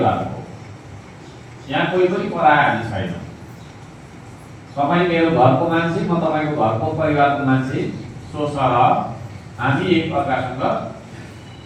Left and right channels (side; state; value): both; identical; correlation 1.00